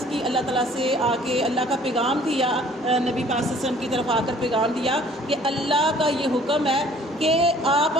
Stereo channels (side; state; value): both; normal; correlation 0.54